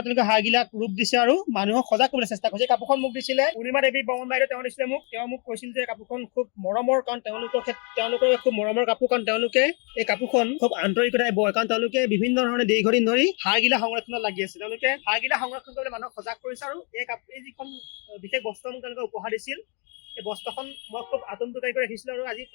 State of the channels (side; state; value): right; quieter; 36.2 dB